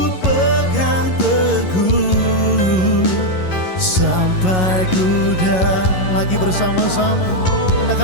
pegang teguh sampai ku lagi bersama-sama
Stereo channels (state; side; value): late; right; 11 ms